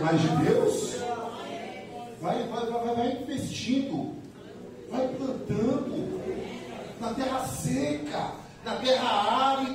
de Deus? Vai investindo. Vai plantando na terra seca, na terra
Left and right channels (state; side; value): identical; both; correlation 1.00